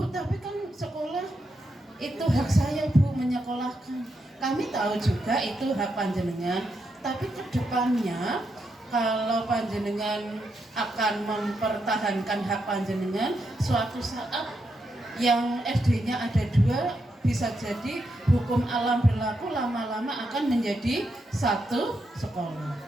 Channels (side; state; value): both; normal; correlation 0.83